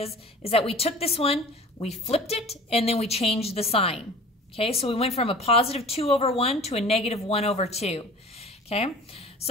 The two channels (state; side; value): normal; both; correlation 0.42